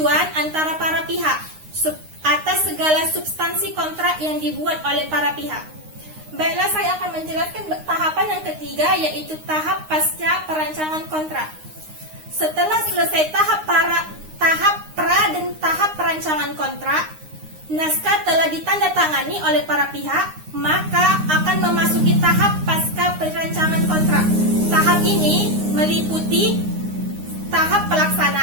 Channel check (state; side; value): late; left; 9.7 ms